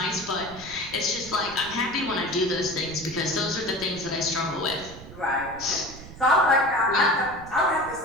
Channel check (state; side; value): noise; right; rumble, 16 dB below the sound